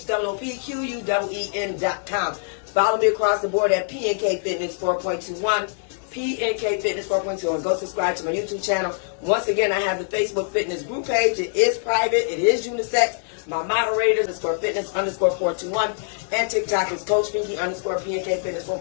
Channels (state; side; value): silent; right; digital silence